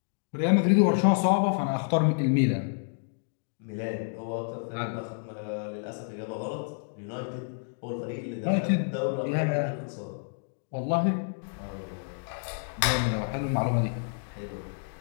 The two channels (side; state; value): right; silent; digital silence